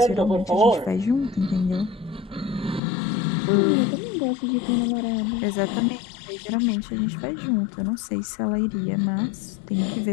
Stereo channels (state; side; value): drops out; right; at 2.8 s